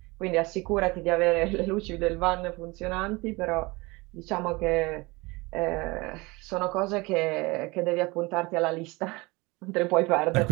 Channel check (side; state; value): left; quieter; 24.0 dB